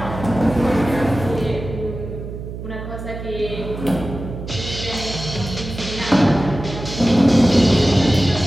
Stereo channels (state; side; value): noise; right; hum, 9 dB below the sound